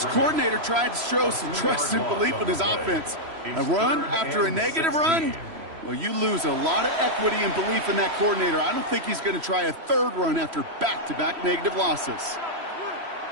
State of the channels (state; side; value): late; left; 3.0 ms